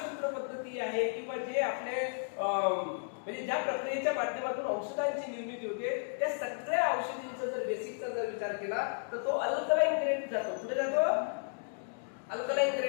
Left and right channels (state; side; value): silent; right; digital silence